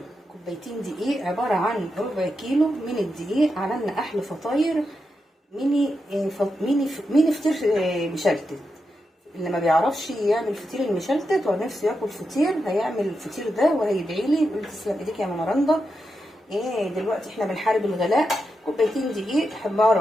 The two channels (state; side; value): normal; both; correlation 0.87